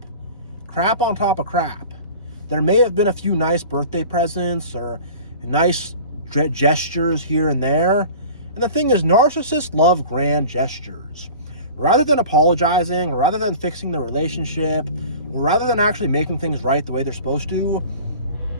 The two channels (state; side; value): inverted; both; correlation -0.40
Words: Crap on top of crap. There may have been a few nice birthday presents or nice gestures here and there. And the thing is, narcissists love grand gestures. Rather than apologizing, or rather than fixing the relationship, or rather than actually making things right the way they're supposed to,